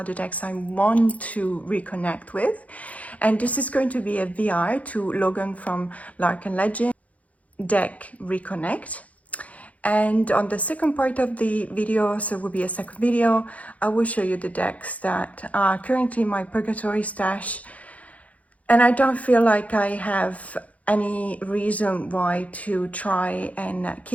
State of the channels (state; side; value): late; right; 0.069 ms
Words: the decks I want to reconnect with. And this is going to be a VR to Logan from Lark and Legend deck Reconnect. And on the second part of the video, so it will be a second video, I will show you the decks that are currently in my Purgatory stash. And I don't feel like I have any reason why to try and